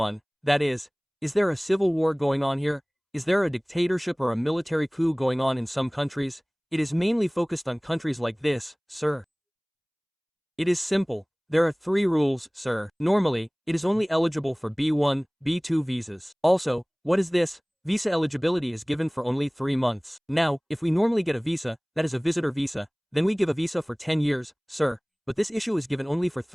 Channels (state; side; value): identical; both; correlation 1.00